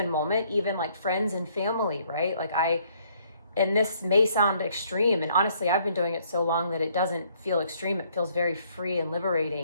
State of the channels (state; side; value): inverted; both; correlation -0.65